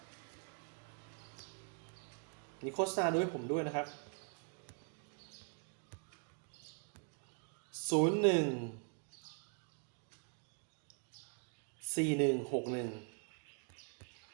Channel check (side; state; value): left; quieter; 40.0 dB